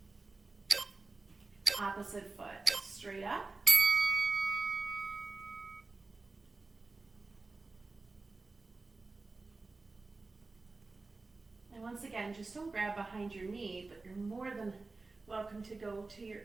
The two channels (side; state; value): left; quieter; 3.7 dB